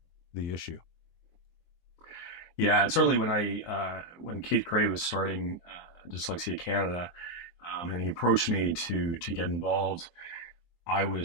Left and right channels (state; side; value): late; right; 23 ms